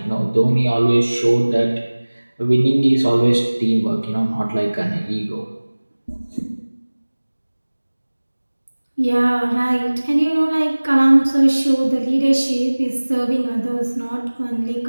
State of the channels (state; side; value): inverted; both; correlation -1.00